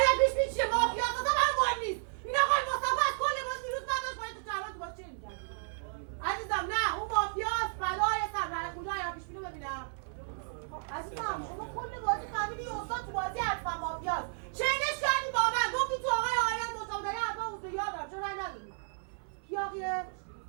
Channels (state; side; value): silent; left; 56 dB below the other